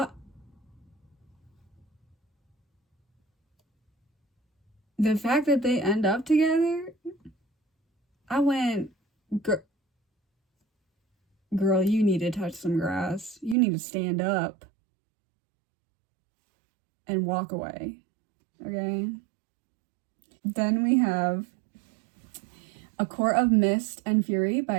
the fact that they end up together, I went, girl, you need to touch some grass. You need to stand up and walk away. Okay? Then we have A Court of Mist and Fury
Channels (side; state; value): left; drops out; at 13.6 s